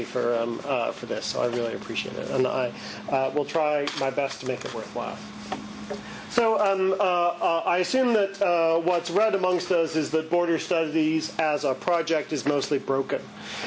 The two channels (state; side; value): identical; both; correlation 1.00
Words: for this. So I really appreciate it, and I will try my best to make it worthwhile. So I assume that what's read amongst us is that border studies as a project is mostly broken.